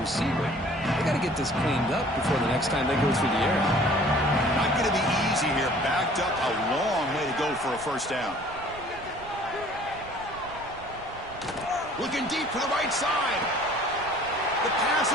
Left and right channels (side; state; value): right; noise; rumble, 18 dB below the sound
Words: They got to get this cleaned up before the next time they go through the air. Not going to be easy here. Backed up a long way to go for a first down. Looking deep to the right side. The pass